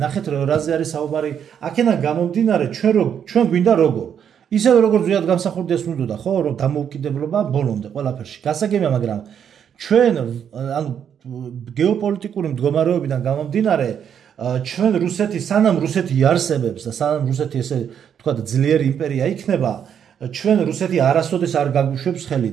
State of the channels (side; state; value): left; quieter; 8.4 dB